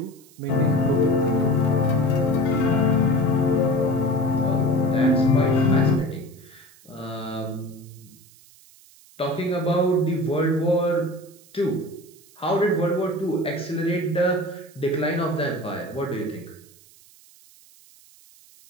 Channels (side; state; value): right; noise; hiss, 26 dB below the sound